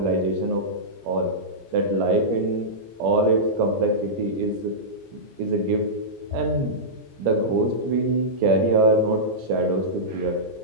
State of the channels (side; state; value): left; late; 17 ms